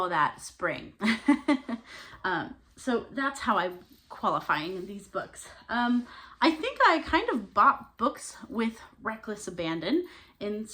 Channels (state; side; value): identical; both; correlation 1.00